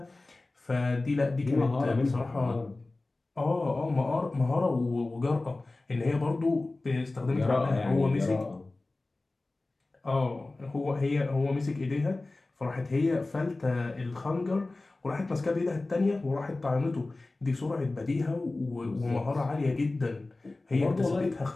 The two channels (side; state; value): right; quieter; 3.1 dB